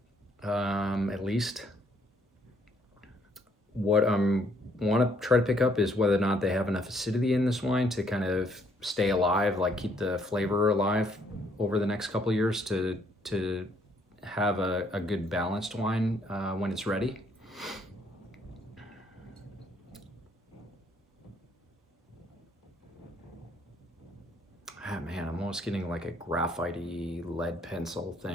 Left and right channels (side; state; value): both; normal; correlation 0.67